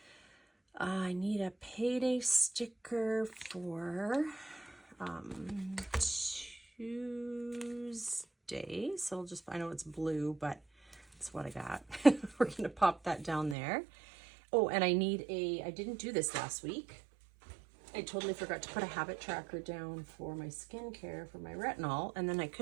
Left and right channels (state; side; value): drops out; left; at 13.6 s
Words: I need a payday sticker for Tuesday. So I'll just, I know it's blue, but that's what I got. We're going to pop that down there. Oh, and I need I didn't do this last week. I totally forgot to put a habit tracker down for my skincare, for my retinol. And then I